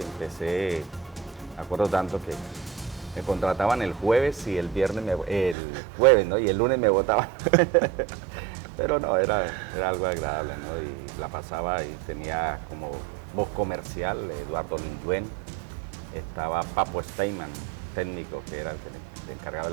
me acuerdo tanto que me contrataban el jueves y el jueves, ¿no? Y el lunes me votaban. Pero no, era algo agradable, ¿no? Y la pasaba y tenía como voz comercial Eduardo Lingüen, estaba Papo Steinman, técnico, que era el que le encargaba de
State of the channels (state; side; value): drops out; left; at 5.6 s